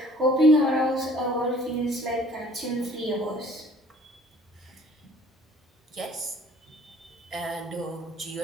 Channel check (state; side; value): normal; both; correlation 0.54